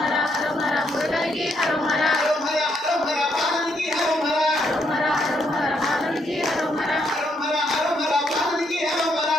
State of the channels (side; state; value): both; normal; correlation 0.75